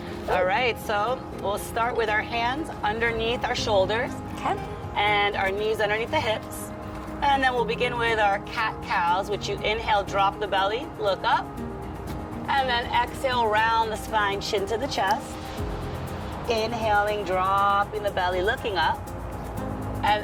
All right, so we'll start with our hands underneath our shoulders. Okay. And our knees underneath the hips. And then we'll begin with our cat-cows, which you inhale, drop the belly, look up. And then exhale, round the spine, chin to the chest. Inhaling, dropping the belly, looking up.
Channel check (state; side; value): identical; both; correlation 1.00